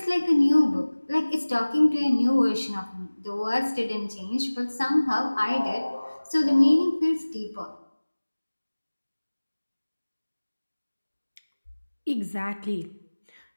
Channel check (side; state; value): both; inverted; correlation -1.00